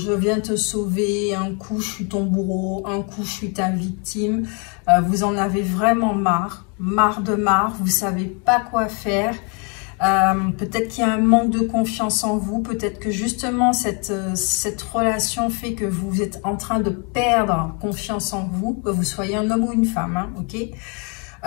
viens te sauver, un coup, je suis ton bourreau, un coup, je suis ta victime. Vous en avez vraiment marre de marre, vous ne savez pas quoi faire. Peut-être qu'il y a un manque de confiance en vous, peut-être que justement cette relation fait que vous êtes en train de perdre confiance en vous, que vous soyez un homme ou une femme, hein, ok?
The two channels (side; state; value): right; quieter; 35.9 dB